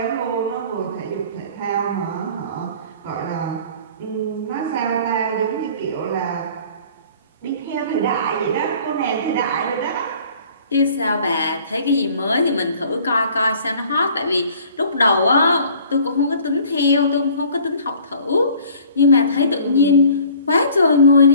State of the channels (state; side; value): inverted; both; correlation -0.51